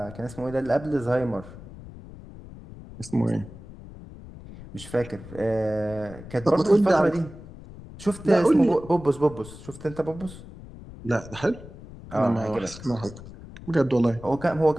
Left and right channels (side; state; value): left; noise; rumble, 16 dB below the sound